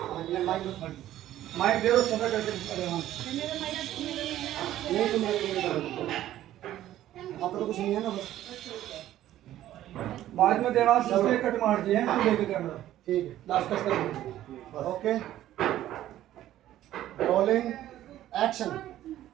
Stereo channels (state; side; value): quieter; left; 13.2 dB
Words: माइक दे दो, छोटा करके देवान। नहीं तो मैं आप तो कुछ नहीं है ना बस। बाद में देवान से इसलिए कट मार दिए हैं, तो लेके कैमरा ठीक है लास्ट कट कर देंगे। बस ओके रोलिंग एक्शन।